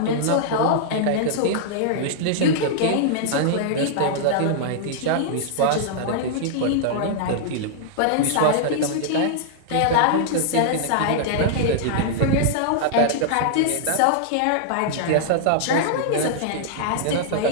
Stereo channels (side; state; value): both; different; correlation -0.01